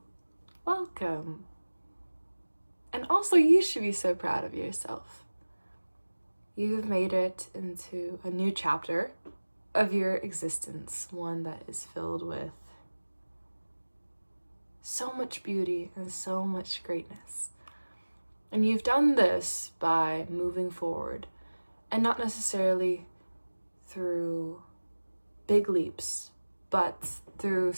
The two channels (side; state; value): both; inverted; correlation -1.00